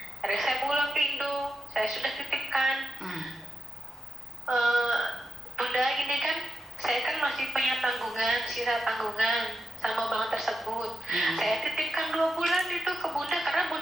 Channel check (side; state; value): both; normal; correlation 0.85